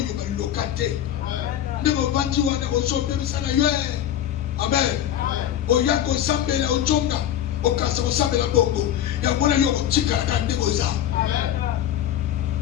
va locater. Ne va pas dire, ne va sauver, ça n'a eu. Amen. Au yako sambele au tonga, au kasa au sambele bongo. Il y a mon aïe au tika la grande boza.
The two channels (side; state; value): right; quieter; 11.1 dB